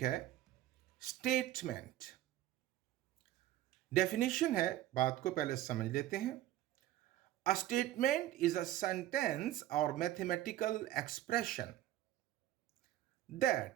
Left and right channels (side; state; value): left; quieter; 13.8 dB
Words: है स्टेटमेंट। डेफिनेशन है, बात को पहले समझ लेते हैं। A statement is a sentence or mathematical expression